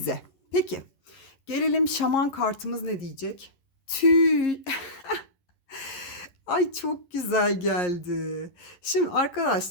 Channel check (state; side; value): late; right; 11 ms